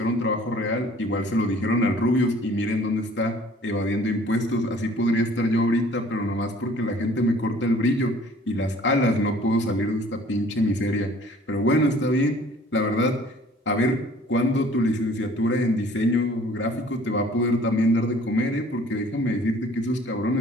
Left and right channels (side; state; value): both; normal; correlation 0.53